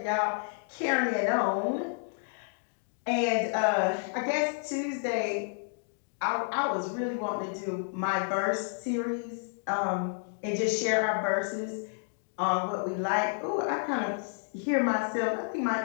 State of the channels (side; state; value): right; silent; 58 dB below the other